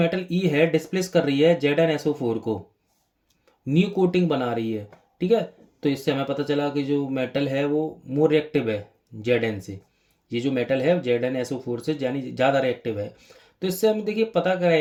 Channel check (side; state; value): both; identical; correlation 1.00